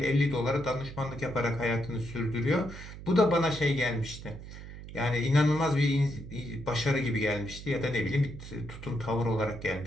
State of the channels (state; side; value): noise; right; hum, 13 dB below the sound